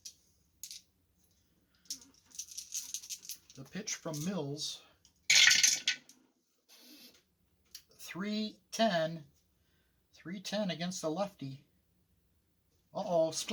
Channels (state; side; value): identical; both; correlation 1.00